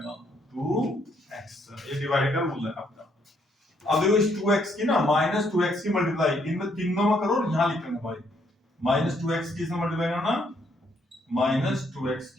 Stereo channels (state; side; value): normal; both; correlation 0.71